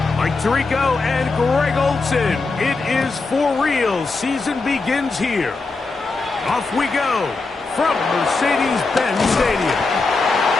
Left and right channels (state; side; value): quieter; right; 3.8 dB